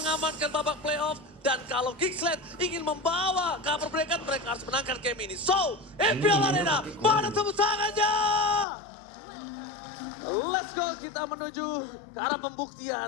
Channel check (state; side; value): drops out; right; at 8.7 s